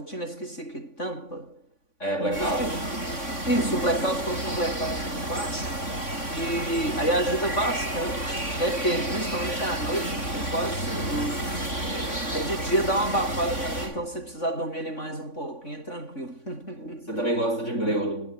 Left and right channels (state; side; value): late; right; 3.5 ms